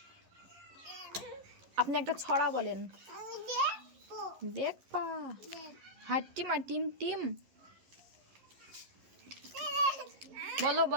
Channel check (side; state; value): left; late; 11 ms